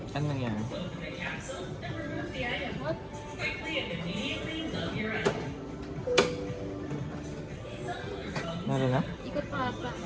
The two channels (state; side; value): identical; both; correlation 1.00